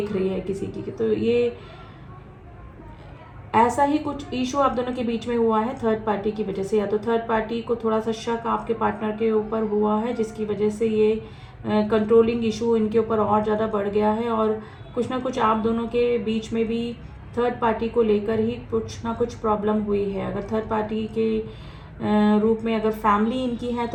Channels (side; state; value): both; identical; correlation 1.00